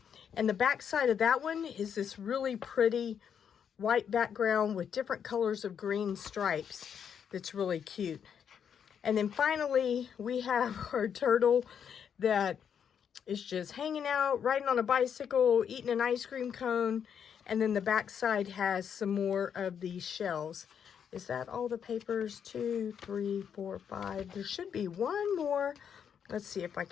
And the back side of that one is this really pretty white background with different colors of green stripes. That's really cute. And then finally, we have our turtle that is just hanging out, riding on a bicycle, eating an ice cream cone. And then the back side has some more of these shells. Is that all the papers? 2, 3, 4, 5. There should be one more. Let's see if I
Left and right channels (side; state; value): right; quieter; 7.9 dB